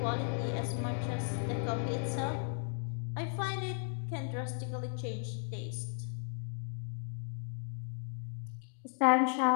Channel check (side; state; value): right; silent; 54 dB below the other